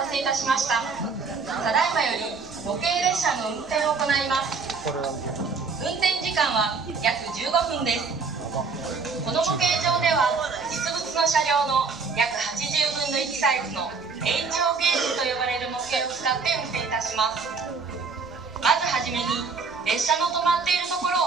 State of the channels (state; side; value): quieter; left; 4.8 dB